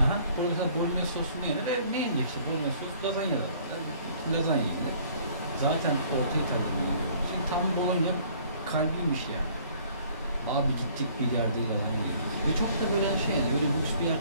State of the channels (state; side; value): inverted; both; correlation -0.57